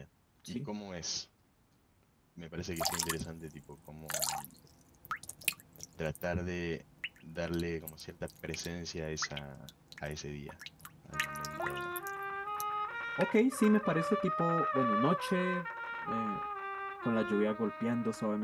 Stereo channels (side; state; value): both; identical; correlation 1.00